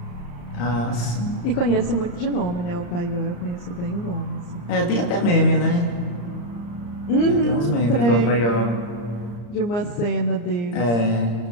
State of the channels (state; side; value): late; right; 34 ms